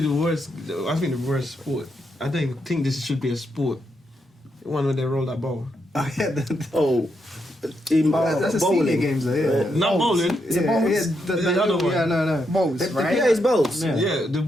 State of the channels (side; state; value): both; normal; correlation 0.81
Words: the worst. I think the worst sport. I don't even think this should be a sport. The one where they roll that ball. oh yeah, Oh, that's a senior bowling. games though. Yeah, Not bowling. Is it bowls? the other one. Yeah, no. Balls, right? Yeah, it's bowls. Yeah. Yeah, the